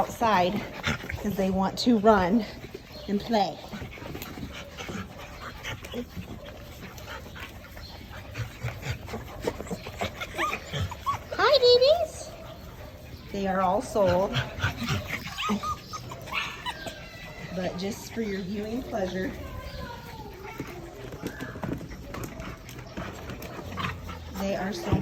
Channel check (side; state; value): both; identical; correlation 1.00